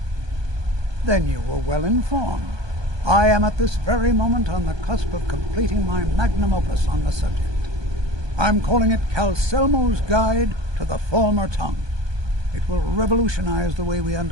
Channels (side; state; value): left; late; 1.2 ms